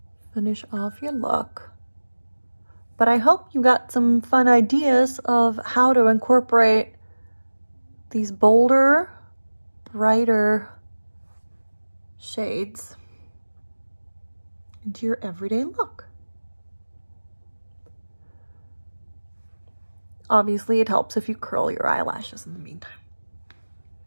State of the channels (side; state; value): both; inverted; correlation -1.00